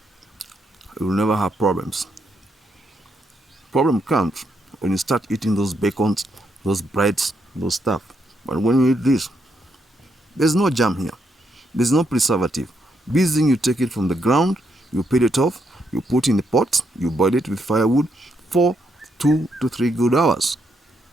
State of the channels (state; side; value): normal; both; correlation 0.78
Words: you will never have problems. Problem comes when you start eating those bacons, those breads, those stuff. But when you eat this, there's no jam here. There's no preservative. This thing, you take it from the ground, you peel it off, you put in the pot, you boil it with firewood for 2 to 3 good hours.